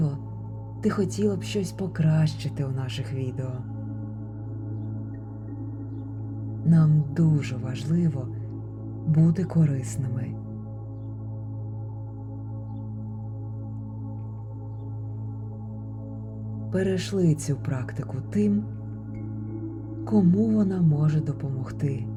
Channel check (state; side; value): identical; both; correlation 1.00